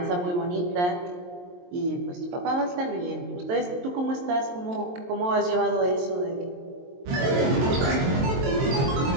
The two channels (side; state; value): left; late; 23 ms